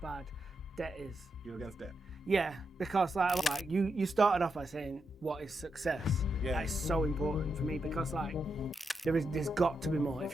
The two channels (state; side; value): normal; both; correlation 0.84